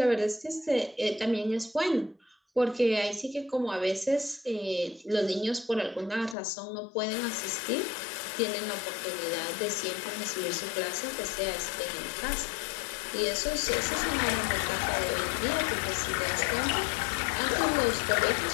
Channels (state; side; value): drops out; right; at 6.4 s